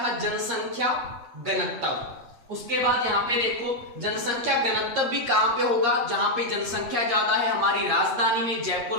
था, जनसंख्या घनत्व। उसके बाद यहाँ पे देखो जनसंख्या घनत्व भी कहां पे होगा, जहां पे जनसंख्या ज्यादा है, हमारी राजधानी में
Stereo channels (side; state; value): left; late; 8.6 ms